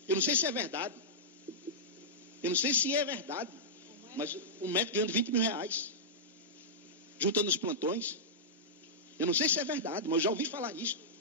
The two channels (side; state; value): both; normal; correlation -0.13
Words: Eu não sei se é verdade. Mas o médico ganhando 20 mil reais, juntando os plantões. Eu não sei se é verdade, mas eu já ouvi falar nisso.